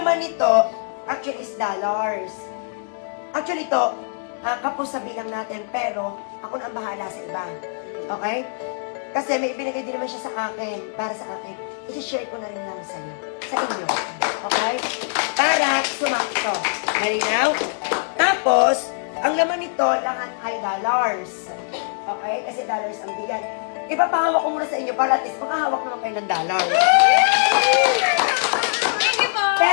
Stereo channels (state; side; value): silent; right; digital silence